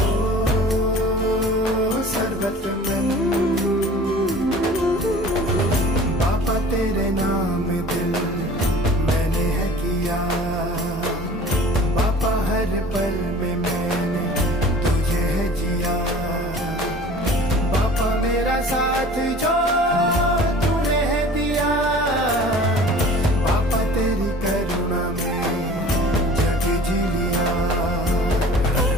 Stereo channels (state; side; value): normal; both; correlation 0.45